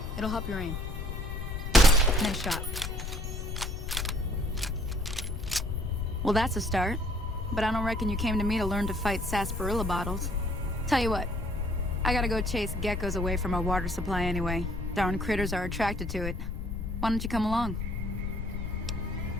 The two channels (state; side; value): noise; left; rumble, 5 dB below the sound